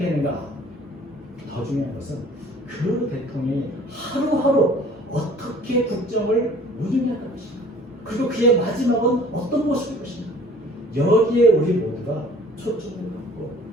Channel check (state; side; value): normal; both; correlation 0.51